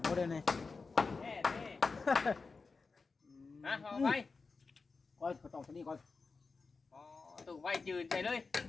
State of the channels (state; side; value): quieter; right; 4.4 dB